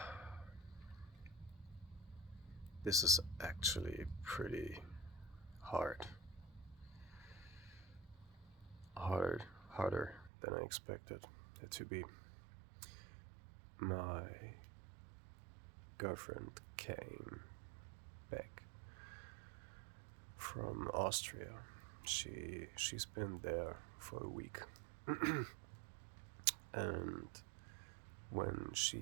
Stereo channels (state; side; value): drops out; left; at 10.3 s